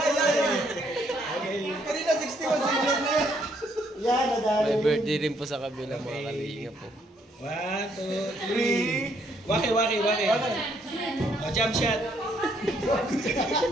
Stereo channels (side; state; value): both; normal; correlation 0.70